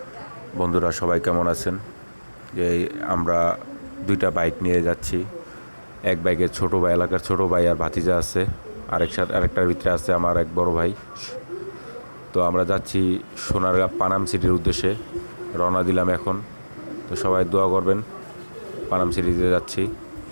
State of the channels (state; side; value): inverted; both; correlation -1.00